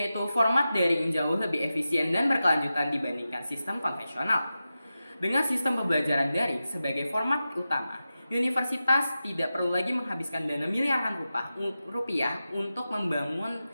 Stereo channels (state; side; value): inverted; both; correlation -0.92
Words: format daring jauh lebih efisien dan berkelanjutan dibandingkan sistem konvensional. Dengan sistem pembelajaran daring sebagai format utama, universitas tidak perlu lagi menghabiskan dana miliaran rupiah untuk membangun